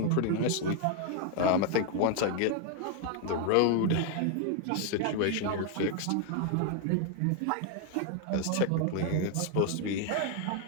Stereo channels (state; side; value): different; both; correlation 0.00